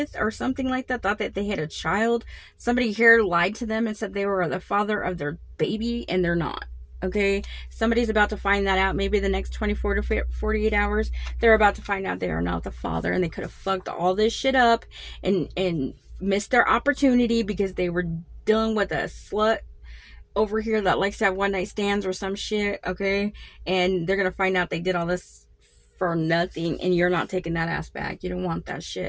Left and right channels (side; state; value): both; identical; correlation 1.00